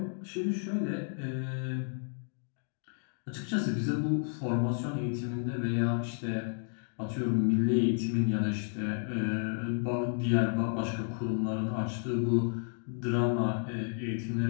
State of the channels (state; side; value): silent; right; 57 dB below the other